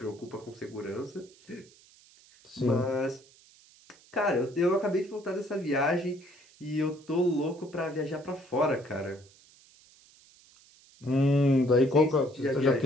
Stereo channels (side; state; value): right; noise; hiss, 27 dB below the sound